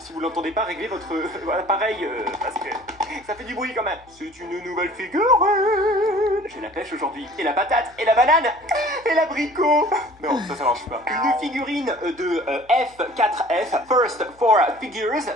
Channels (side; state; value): left; noise; hum, 29 dB below the sound